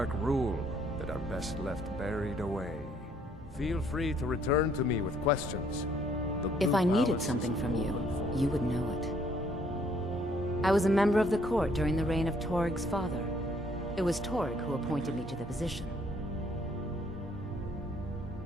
rule that are best left buried away. Feel free to return to me with questions. If I needed something from you, you would know it. I was a member of the court during the reign of Toryg's father. It was Torygg who appointed me to the position.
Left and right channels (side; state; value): both; normal; correlation 0.65